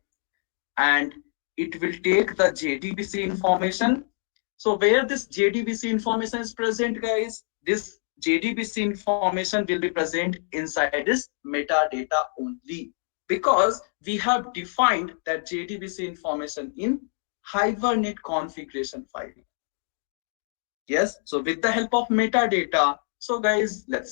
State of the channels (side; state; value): right; silent; digital silence